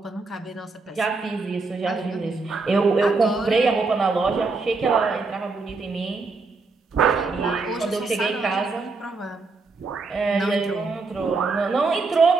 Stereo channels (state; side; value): quieter; left; 4.0 dB